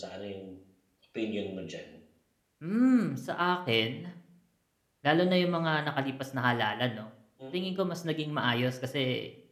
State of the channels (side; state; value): both; identical; correlation 1.00